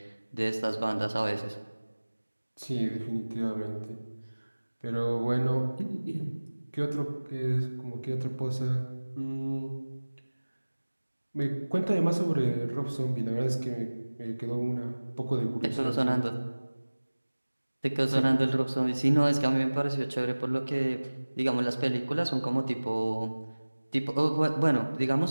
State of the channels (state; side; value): inverted; both; correlation -1.00